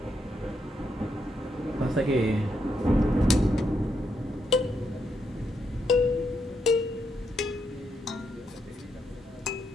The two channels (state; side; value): normal; both; correlation 0.80